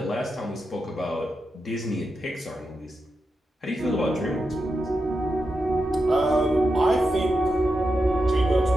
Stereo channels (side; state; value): both; normal; correlation 0.88